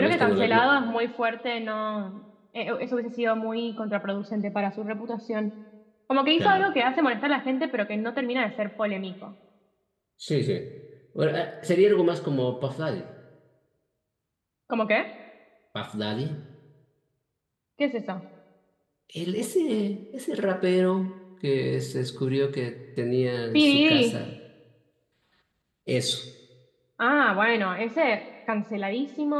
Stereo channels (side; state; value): both; identical; correlation 1.00